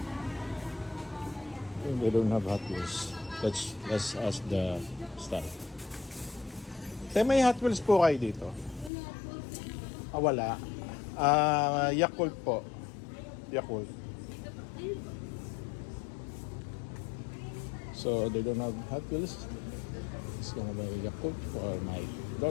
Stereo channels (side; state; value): right; drops out; at 8.9 s